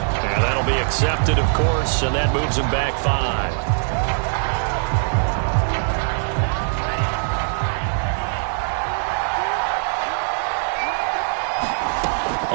Accepted, of course, and that moves him back 5.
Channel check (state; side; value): silent; left; 65 dB below the other